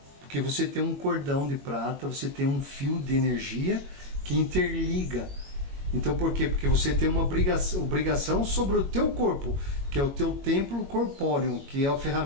porque você tem um cordão de prata, você tem um fio de energia que interliga. Então por quê? Porque você tem uma obrigação sobre o teu corpo, que é o teu templo corpóreo, que é a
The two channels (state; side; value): late; left; 21 ms